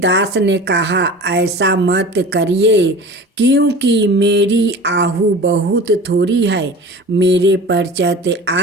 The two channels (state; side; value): normal; both; correlation 0.37